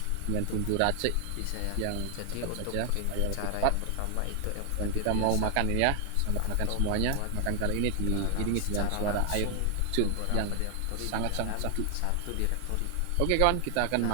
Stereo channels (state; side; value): different; both; correlation 0.00